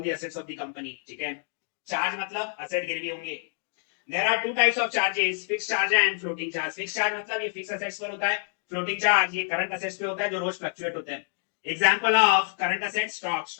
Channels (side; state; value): right; silent; digital silence